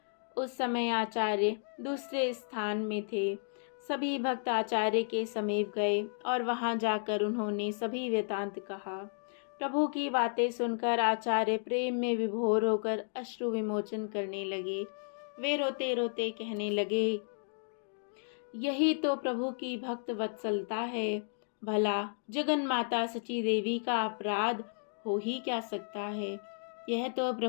उस समय आचार्य दूसरे स्थान में थे। सभी भक्त आचार्य के समीप गए और वहां जाकर उन्होंने सभी वृतांत कहा। प्रभु की बातें सुनकर आचार्य प्रेम में विभोर होकर अश्रु विमोचन करने लगे। वे रोते रोते कहने लगे, यही तो प्रभु की भक्त वत्सलता है। भला जगन माता सची देवी का अपराध हो ही क्या सकता है। यह तो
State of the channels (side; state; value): right; silent; digital silence